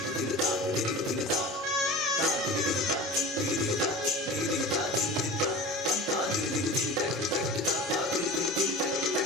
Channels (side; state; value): both; normal; correlation 0.35